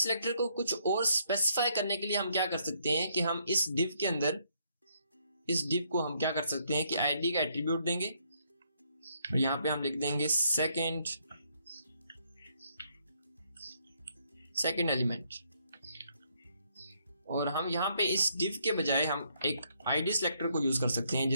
को कुछ और स्पेसिफाई करने के लिए हम क्या कर सकते हैं कि हम इस डिव के अंदर, इस डिव को हम क्या कर सकते हैं कि आईडी का एट्रीब्यूट देंगे और यहाँ पे हम लिख देंगे सेकंड एलिमेंट, और हम यहाँ पे इस डिव के बजाय हम एक आईडी सेलेक्टर को यूज कर सकते हैं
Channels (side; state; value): both; inverted; correlation -0.71